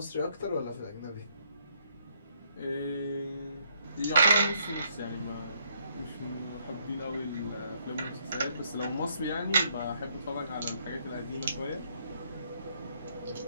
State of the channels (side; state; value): both; inverted; correlation -0.70